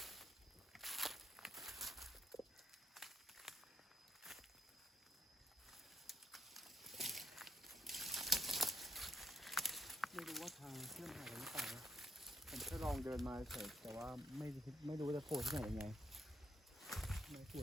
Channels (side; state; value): both; normal; correlation 0.73